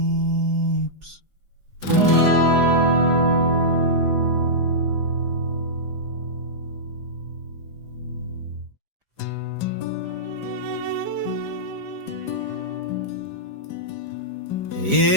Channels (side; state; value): left; late; 4.9 ms